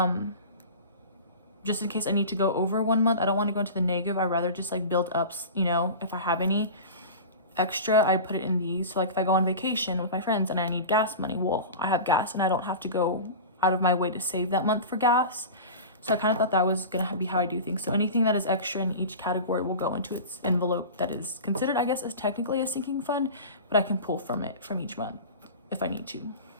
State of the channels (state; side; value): inverted; both; correlation -0.32